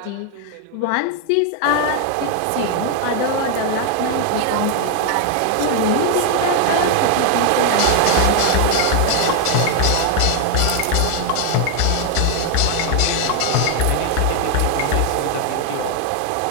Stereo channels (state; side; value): different; both; correlation 0.00